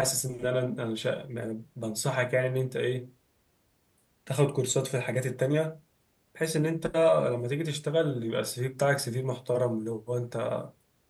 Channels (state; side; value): identical; both; correlation 1.00